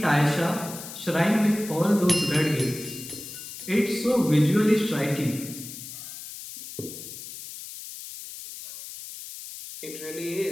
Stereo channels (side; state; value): left; noise; hiss, 12 dB below the sound